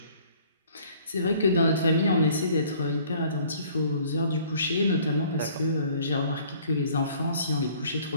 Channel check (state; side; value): inverted; both; correlation -0.56